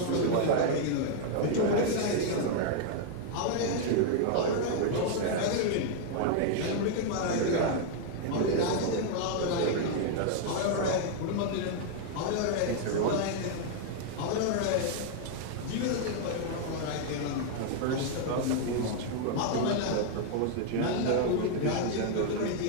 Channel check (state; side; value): different; both; correlation 0.00